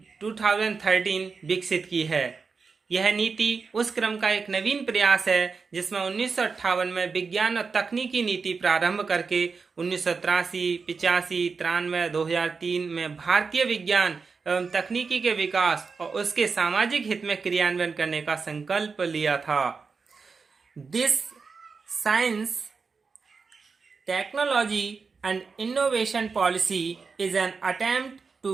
2013 विकसित की है। यह नीति उस क्रम का एक नवीन प्रयास है जिसमें 1958 में विज्ञान और तकनीकी नीति प्रारंभ करके 1983, 85, 93, 2003 में भारतीय विज्ञान एवं तकनीकी के विकास और उसके सामाजिक हित में क्रियान्वयन करने का संकल्प लिया था। This science technology and innovation policy is an attempt to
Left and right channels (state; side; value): quieter; left; 4.9 dB